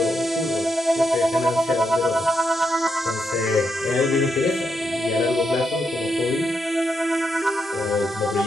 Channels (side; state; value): both; normal; correlation 0.81